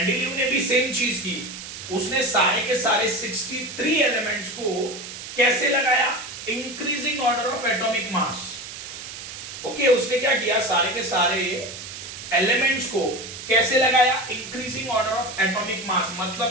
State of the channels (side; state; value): right; noise; hiss, 11 dB below the sound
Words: ने भी सेम चीज की, उसने सारे के सारे 63 एलिमेंट्स को कैसे लगाया, increasing order of atomic mass. Okay, उसने क्या किया, सारे के सारे एलिमेंट्स को कैसे लगाया, increasing order of atomic mass.